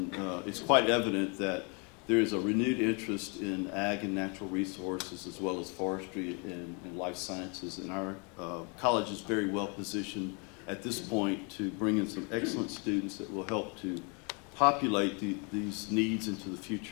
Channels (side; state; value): right; quieter; 33.9 dB